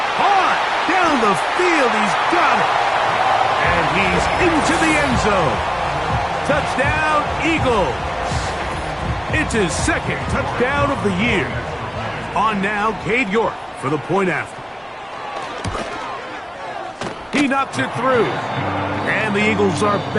hard down the field. He's got it. And he's into the end zone. Touchdown, Eagles. It's his second touchdown of the year. On now, Cade York for the point after. He knocks it through. And the Eagles are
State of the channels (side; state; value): both; identical; correlation 1.00